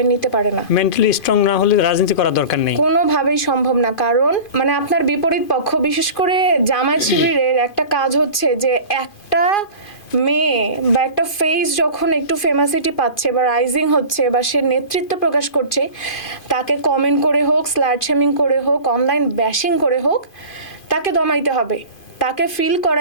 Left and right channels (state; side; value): late; right; 2.5 ms